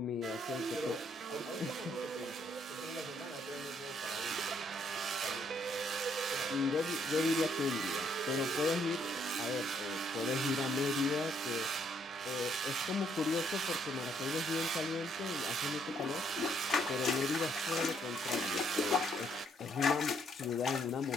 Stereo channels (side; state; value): both; normal; correlation 0.69